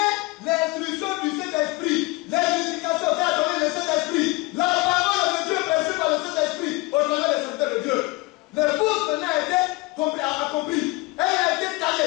l'instruction du Saint-Esprit, l'éducation qu'a donné le Saint-Esprit, la parole de Dieu prêchée par le Saint-Esprit au travers des serviteurs de Dieu. L'épouse maintenant a été accomplie. Elle a été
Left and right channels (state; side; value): quieter; right; 22.9 dB